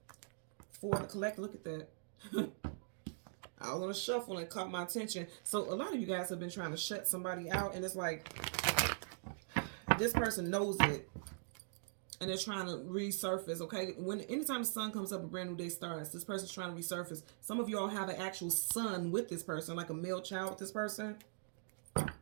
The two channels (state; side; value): silent; left; digital silence